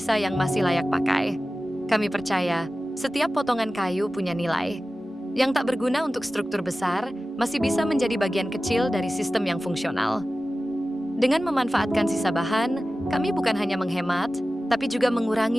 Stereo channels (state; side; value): normal; both; correlation 0.95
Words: yang masih layak pakai. Kami percaya, setiap potongan kayu punya nilai. Yang tak berguna untuk struktur besar, masih bisa menjadi bagian kecil dari sistem yang fungsional. Dengan memanfaatkan sisa bahan, kami bukan hanya menghemat, tapi juga